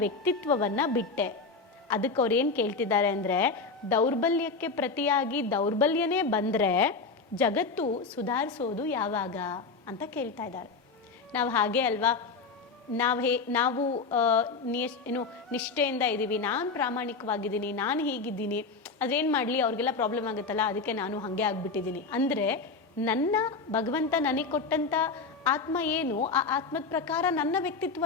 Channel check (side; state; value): right; quieter; 4.4 dB